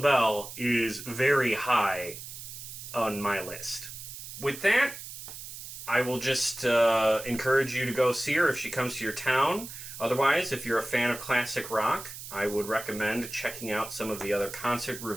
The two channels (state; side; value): noise; right; hiss, 11 dB below the sound